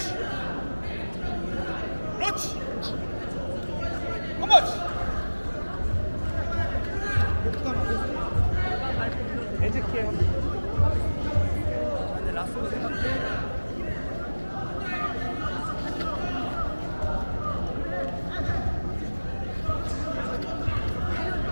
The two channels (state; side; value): inverted; both; correlation -1.00